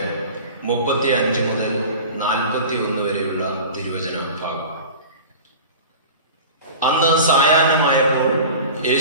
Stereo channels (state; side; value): inverted; both; correlation -0.37